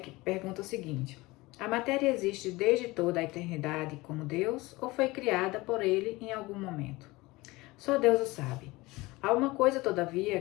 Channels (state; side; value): quieter; right; 21.4 dB